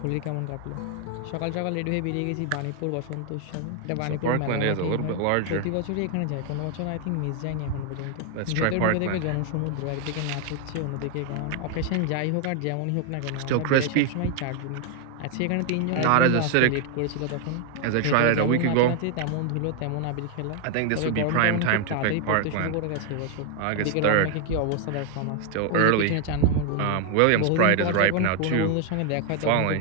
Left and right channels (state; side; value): different; both; correlation 0.00